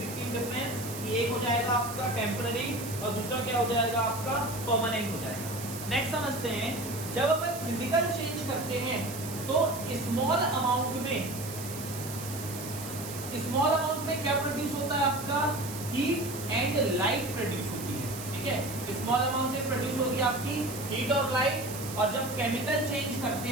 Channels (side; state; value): right; noise; hiss, 10 dB below the sound